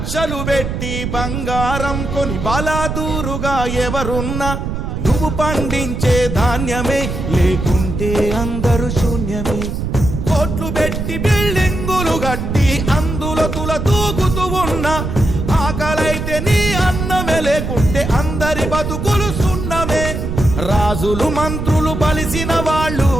పెట్టి బంగారం కొని బలాదూరుగా ఎవరున్నా, నువ్వు పండించే ధాన్యమే లేకుంటే అందరూ శూన్యమే. కోట్లు పెట్టి బిల్డింగులు కట్టి అందులో తుల తూగుతూ ఉన్నా, ఆకలైతే నీ అన్నమే లేకుంటే అందరి బతుకులు సున్నమే. రాజులు మంత్రులు బలిసిన వాళ్ళు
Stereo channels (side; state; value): right; noise; rumble, 4 dB below the sound